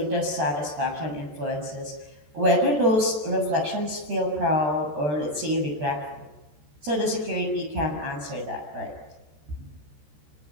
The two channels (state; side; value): late; left; 13 ms